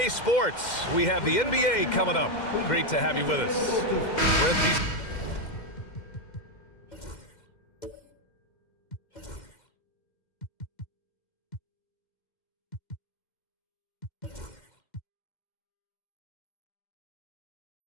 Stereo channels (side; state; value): right; late; 2.1 ms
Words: Sports. We have the NBA coming up. Great to have you with us. Brent, these